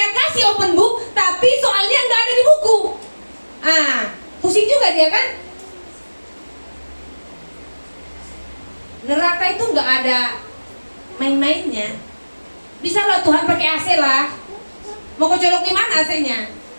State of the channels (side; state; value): both; inverted; correlation -1.00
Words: kasih open book, tapi soalnya nggak ada di buku. Pusing juga dia kan? Neraka itu nggak ada main-mainnya. Bisa lah Tuhan pakai AC lah. Mau kau colok di mana AC-nya?